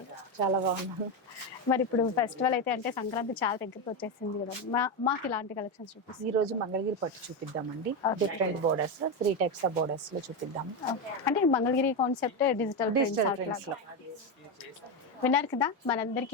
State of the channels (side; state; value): both; normal; correlation 0.12